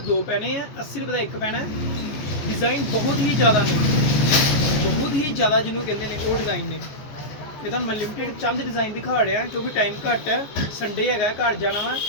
ਪੈਣੇ ਆ, 80 ਰੁਪਏ ਦਾ ਇੱਕ ਪੈਣਾ। ਡਿਜ਼ਾਈਨ ਬਹੁਤ ਹੀ ਜ਼ਿਆਦਾ ਨੇ, ਬਹੁਤ ਹੀ ਜ਼ਿਆਦਾ ਜਿਹਨੂੰ ਕਹਿੰਦੇ ਨੇ ਉਹ ਡਿਜ਼ਾਈਨ ਨੇ। ਇਹ ਤਾਂ ਮੈਂ ਲਿਮਿਟਡ ਚੰਦ ਡਿਜ਼ਾਈਨ ਦਿਖਾ ਰਿਹਾ ਕਿਉਂਕਿ ਟਾਈਮ ਘੱਟ ਹੈ, ਸੰਡੇ ਹੈਗਾ, ਘਰ ਜਾਣਾ ਵਾ।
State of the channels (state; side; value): late; right; 14 ms